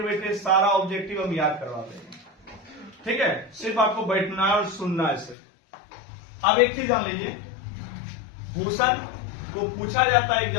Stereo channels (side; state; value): right; drops out; at 5.4 s